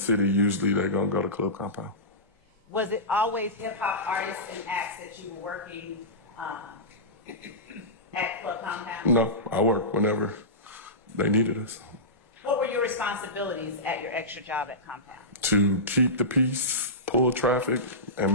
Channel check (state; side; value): normal; both; correlation -0.18